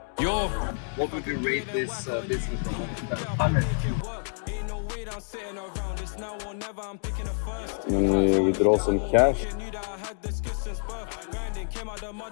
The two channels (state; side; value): silent; right; digital silence